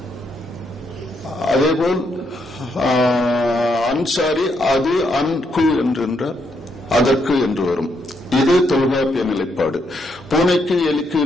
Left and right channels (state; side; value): normal; both; correlation 0.77